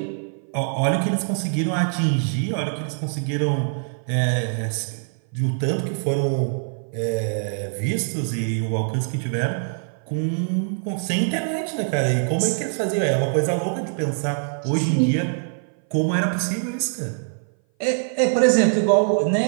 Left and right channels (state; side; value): silent; left; 58 dB below the other